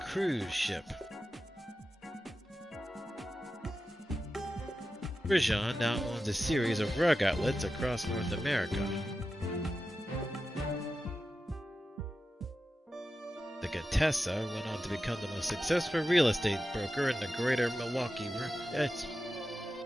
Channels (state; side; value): normal; both; correlation 0.92